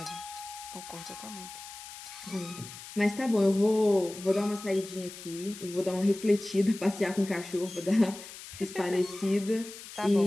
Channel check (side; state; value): left; noise; hiss, 14 dB below the sound